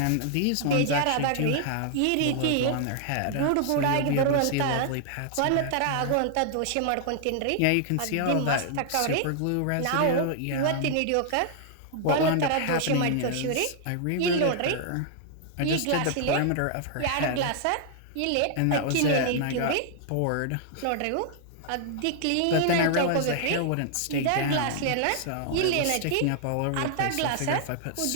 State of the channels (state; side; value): different; both; correlation -0.01